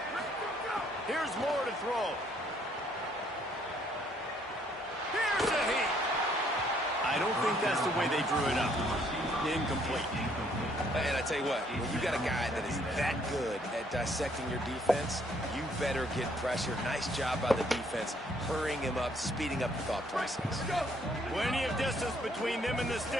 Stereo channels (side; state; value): both; normal; correlation 0.66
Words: Here's more to throw. Here's a heat. I don't think that's the way they drew it up. Incomplete. And I tell you what, when you got a guy that is that good at dissecting your defense, you better get pressure. Nice job by the defense, hurrying him up, speeding up the thought process. Plenty of distance between them and the